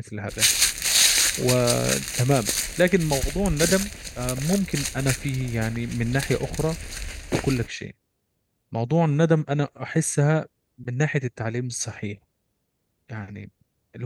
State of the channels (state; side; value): identical; both; correlation 1.00